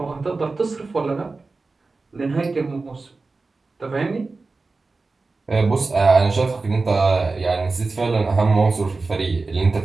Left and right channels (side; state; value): left; quieter; 3.8 dB